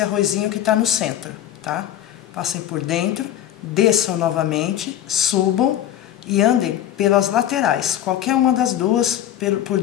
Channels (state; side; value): quieter; right; 11.5 dB